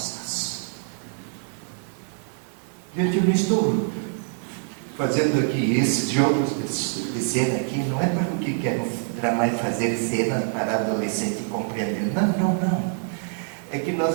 Gente, eu não estou fazendo aqui esses jogos de cena aqui, não é para o que quero fazer cenas para adolescente compreender. Não. É que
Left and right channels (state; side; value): silent; left; digital silence